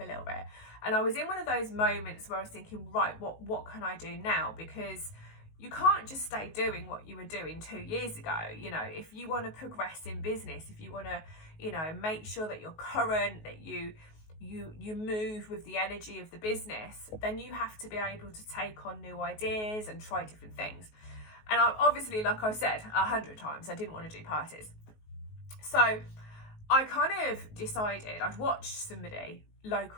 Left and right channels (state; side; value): late; right; 19 ms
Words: little bit. And I was in one of those moments where I was thinking, right, what can I do now? Because you can't just stay doing what you were doing 2 years ago. You know, if you want to progress in business, if you want to, you know, make sure that you're current, that you move with the energy of the business, then you have to be able to take on new ideas and try different things. And I, obviously, like I said 100 times, I didn't want to do parties. So I kind of decided, I'd watched somebody